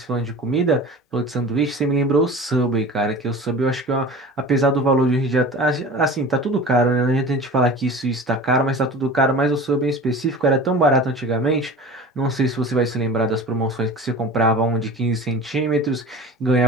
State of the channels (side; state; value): both; normal; correlation 0.37